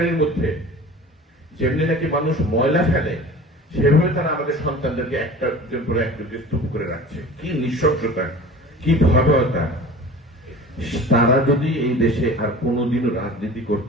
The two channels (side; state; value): both; normal; correlation 0.40